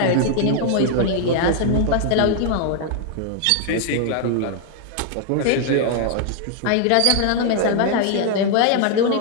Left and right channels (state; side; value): different; both; correlation 0.00